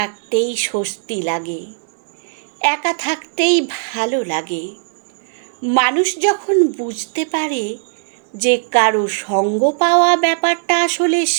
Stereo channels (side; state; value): left; silent; digital silence